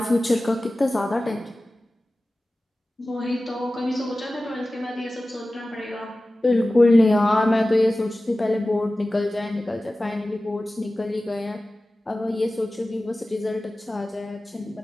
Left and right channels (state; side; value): normal; both; correlation 0.96